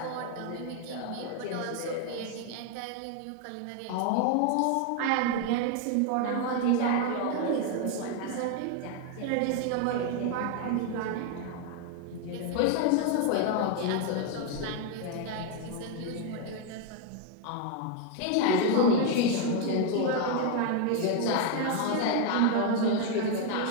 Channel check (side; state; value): both; different; correlation 0.01